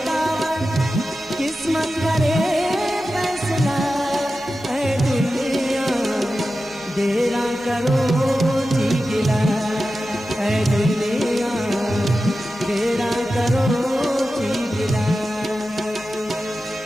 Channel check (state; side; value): normal; both; correlation 0.93